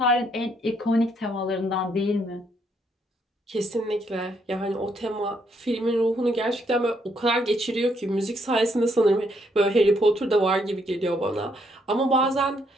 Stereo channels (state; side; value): normal; both; correlation 0.72